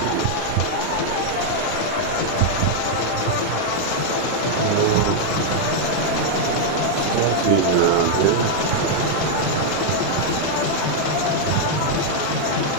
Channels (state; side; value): different; both; correlation -0.01